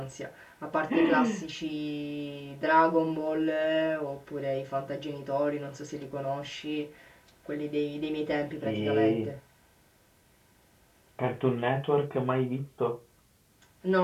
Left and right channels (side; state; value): both; identical; correlation 1.00